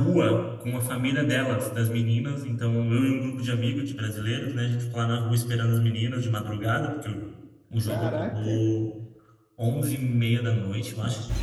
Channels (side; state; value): both; identical; correlation 1.00